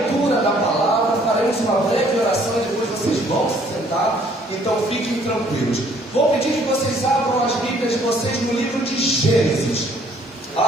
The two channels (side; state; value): both; normal; correlation 0.61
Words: da palavra. Faremos uma breve oração e depois vocês vão se sentar, então fiquem tranquilos. Vou pedir que vocês abram as Bíblias de vocês no livro de Gênesis.